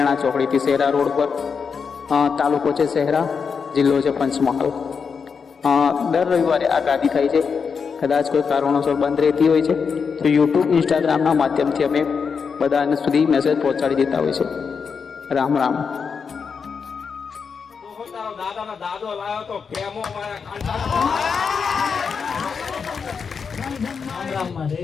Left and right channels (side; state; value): right; quieter; 5.9 dB